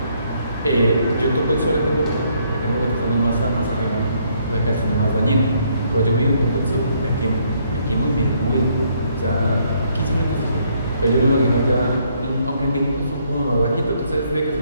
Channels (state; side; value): inverted; both; correlation -0.69